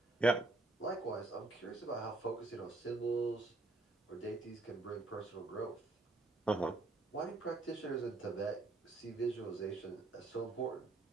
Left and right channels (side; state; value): left; quieter; 3.2 dB